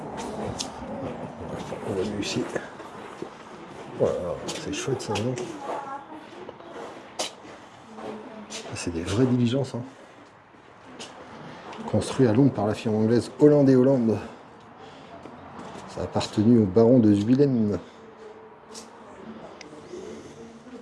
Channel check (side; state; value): both; identical; correlation 1.00